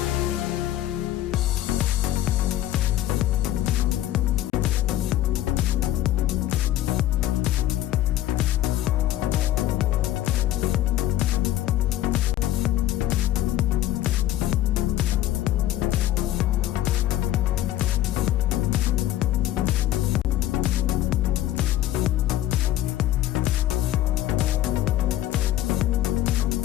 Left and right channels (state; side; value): quieter; right; 13.6 dB